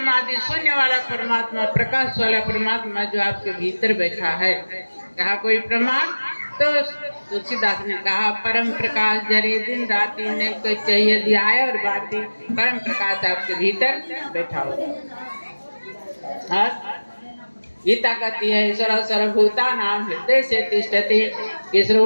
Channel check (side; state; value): both; inverted; correlation -1.00